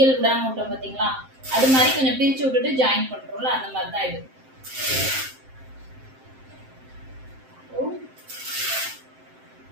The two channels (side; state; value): left; late; 7.7 ms